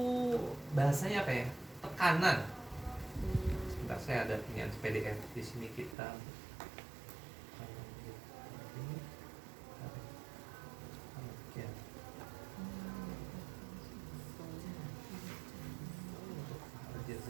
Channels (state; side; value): drops out; left; at 6.0 s